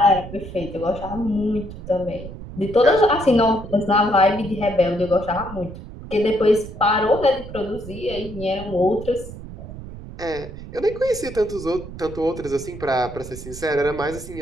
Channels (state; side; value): noise; right; rumble, 12 dB below the sound